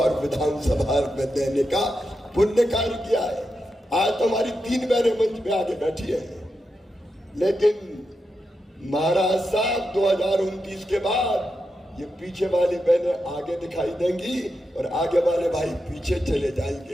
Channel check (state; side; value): normal; both; correlation 0.87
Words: विधानसभा में देने का पुण्य कार्य किया है। आज तो हमारी 3 बहनें मंच पे आगे बैठी है, लेकिन महाराज साहब 2029 के बाद ये पीछे वाली बहनें आगे दिखाई देंगी और आगे वाले भाई पीछे चले